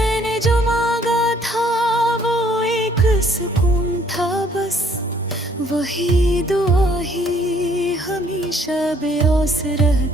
सुकून था बस वही दुआ ही हमेशा बेऔस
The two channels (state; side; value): normal; both; correlation 0.62